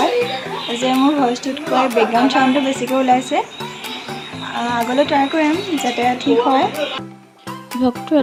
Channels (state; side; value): identical; both; correlation 1.00